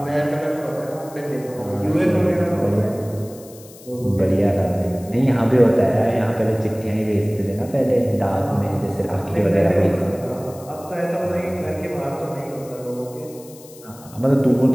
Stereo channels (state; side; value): noise; left; hiss, 21 dB below the sound